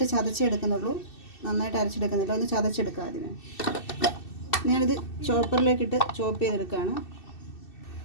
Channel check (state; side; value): late; right; 2.6 ms